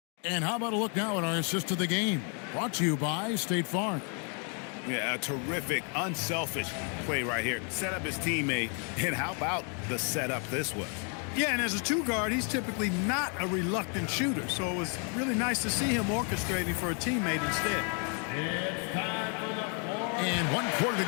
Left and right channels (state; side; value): quieter; right; 39.6 dB